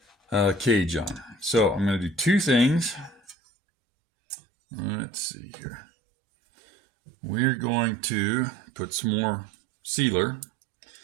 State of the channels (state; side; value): drops out; left; at 3.4 s